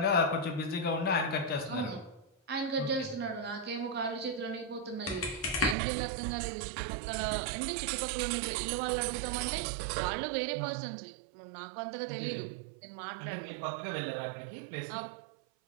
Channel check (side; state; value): left; drops out; at 5.8 s